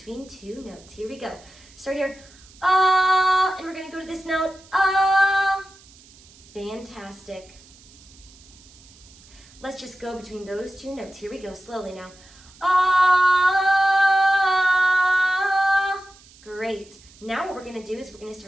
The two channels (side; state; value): right; noise; hiss, 25 dB below the sound